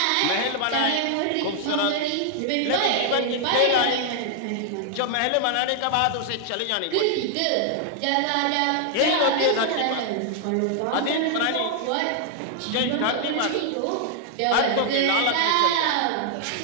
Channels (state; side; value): different; both; correlation 0.00